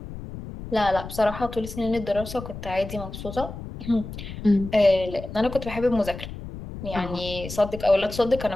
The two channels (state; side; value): noise; left; rumble, 10 dB below the sound